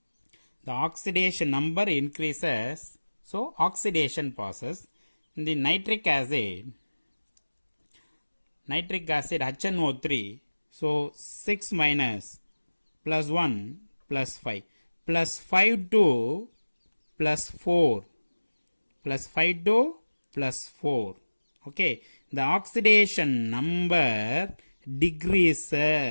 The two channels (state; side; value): inverted; both; correlation -1.00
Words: the oxidation number increases. So, oxidation process. In the nitric acid HNO₃. So, 6 minus plus 1 plus 5 plus 5 to plus 4 plus 5 to plus 4. Okay, the oxidation number